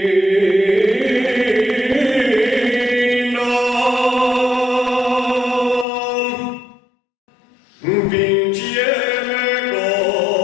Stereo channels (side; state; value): right; drops out; at 5.9 s